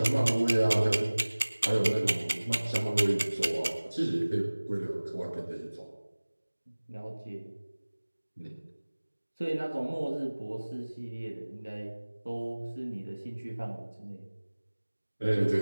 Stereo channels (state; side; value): inverted; both; correlation -1.00